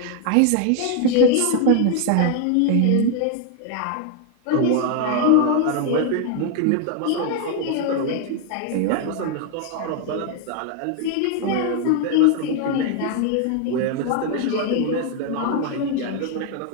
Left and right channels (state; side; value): different; both; correlation 0.00